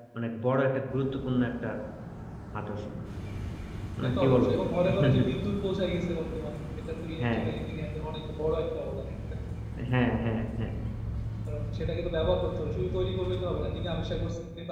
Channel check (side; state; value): both; identical; correlation 1.00